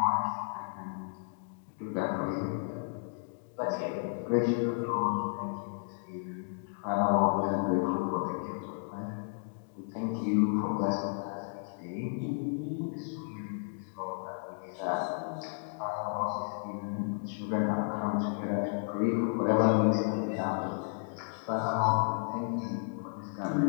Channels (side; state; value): right; silent; digital silence